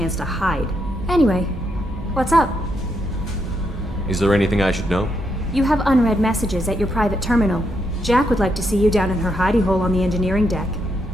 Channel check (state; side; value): normal; both; correlation 0.79